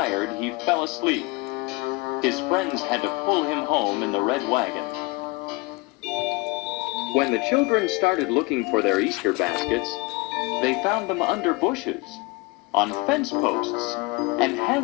he fell asleep. His friends had to pull him home in the red wagon. When the children started looking for their Easter baskets, they found them under bushes, on fence posts, and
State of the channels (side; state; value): right; quieter; 24.6 dB